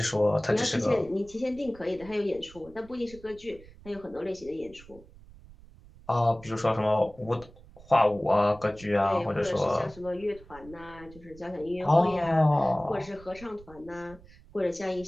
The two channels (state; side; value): noise; right; rumble, 21 dB below the sound